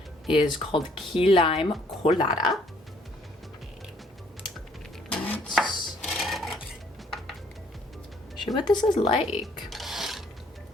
is called Key Lime Colada. Let's show what this is like.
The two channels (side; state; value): both; normal; correlation 0.63